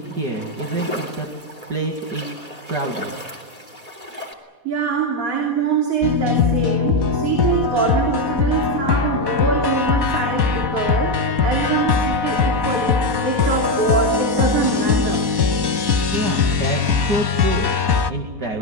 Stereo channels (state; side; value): late; left; 4.2 ms